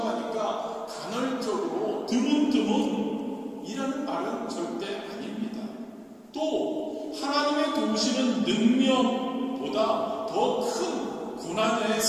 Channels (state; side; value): identical; both; correlation 1.00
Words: 하니까 간헐적으로 드문드문 이라는 말은 절대 아닙니다. 또 하나님의 도우시는 능력보다 더 큰 고난의